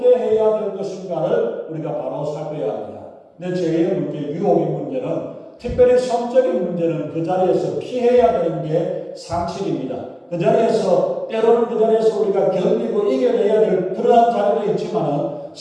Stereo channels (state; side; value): identical; both; correlation 1.00